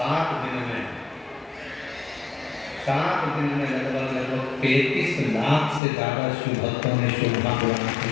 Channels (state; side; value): drops out; right; at 5.8 s